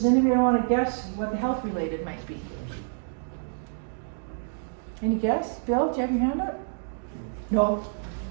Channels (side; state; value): left; silent; digital silence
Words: anybody want to guess what the health related might be? Any guess? Bill, do you have your hand up? No.